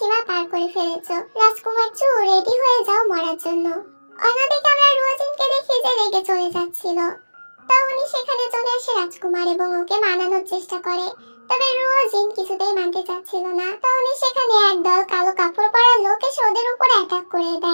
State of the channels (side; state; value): both; inverted; correlation -1.00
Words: পার করে ফেলেছো। রাজকুমার চু, রেডি হয়ে যাও মরার জন্য। অন্যদিকে আমরা রোজিনকে দেখি যে রেগে চলে যাচ্ছিল। তখনই সেখানে চলে আসে রাজকুমার এবং ওকে মানানোর চেষ্টা করে, তবে রোজিন কিছুতেই মানতে চাচ্ছিল না। তখনই সেখানে একদল কালো কাপড় পরা লোক এসে ওদের উপর অ্যাটাক করে